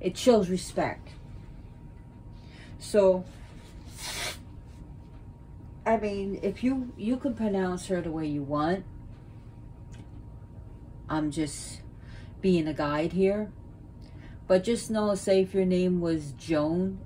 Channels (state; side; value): identical; both; correlation 1.00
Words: shows respect. So, I mean, if you can pronounce her the way you want. I'm just being a guide here. But just know, say if your name was Joan